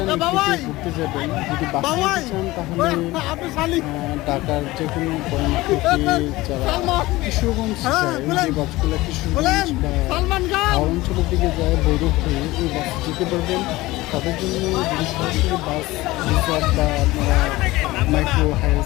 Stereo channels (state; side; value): quieter; right; 19.2 dB